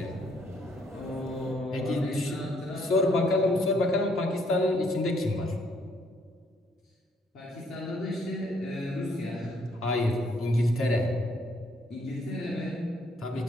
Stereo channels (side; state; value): both; normal; correlation 0.68